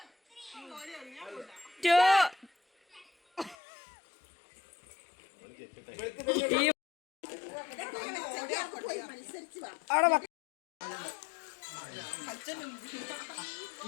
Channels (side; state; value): right; drops out; at 3.6 s